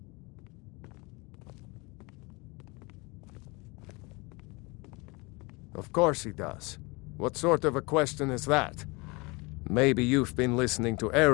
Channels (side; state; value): right; quieter; 26.6 dB